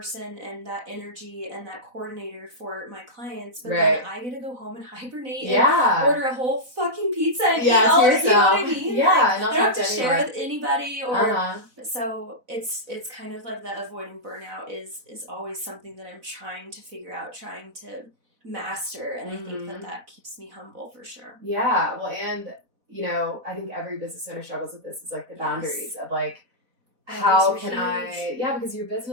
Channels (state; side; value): late; left; 4.0 ms